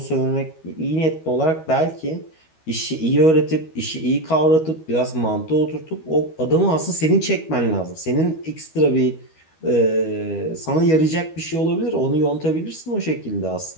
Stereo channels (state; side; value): late; right; 12 ms